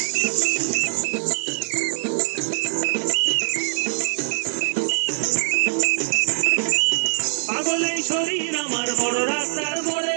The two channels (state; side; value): silent; left; 64 dB below the other